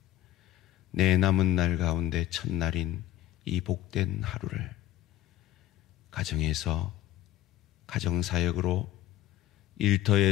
내 남은 날 가운데 첫날인 이 복된 하루를 가정에서 가정사역으로,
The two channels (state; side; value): quieter; right; 13.4 dB